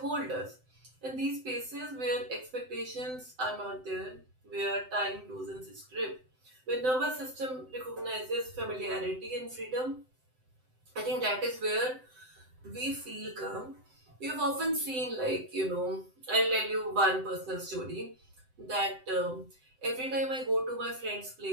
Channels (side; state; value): left; late; 7.8 ms